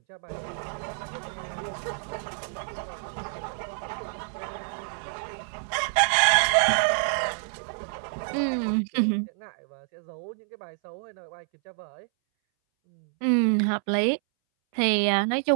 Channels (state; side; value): silent; left; 60 dB below the other